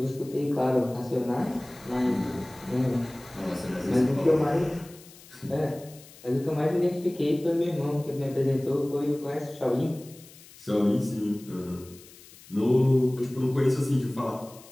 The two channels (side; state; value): left; noise; hiss, 21 dB below the sound